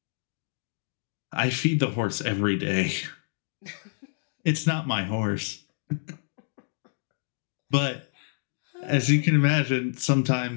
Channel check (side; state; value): right; silent; digital silence